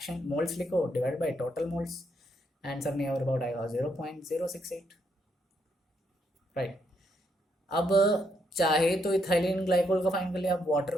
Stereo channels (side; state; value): both; normal; correlation 0.76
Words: मोल्स लिखो divide by total moles, answer near about आएगा 0.068। राइट, अब चाहे तो इथाइलिन ग्लाइकोल का फाइंड कर लिया, आप वाटर